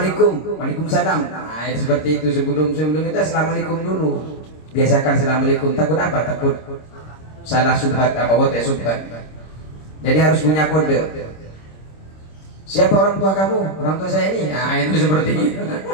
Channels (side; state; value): right; late; 26 ms